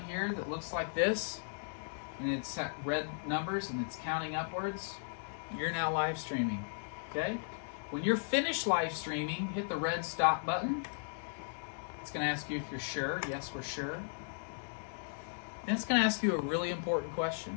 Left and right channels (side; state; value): right; silent; digital silence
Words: here that looks like this, and it's red numbers and it's counting upwards, you're now live streaming. Okay? When you're finished live streaming, hit the red stop button. It's going to ask you if you're sure. Yes, we're sure. Then it's going to ask you a really important